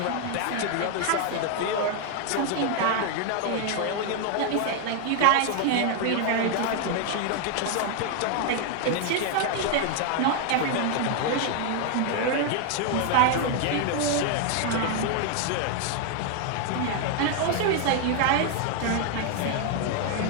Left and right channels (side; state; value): both; different; correlation 0.00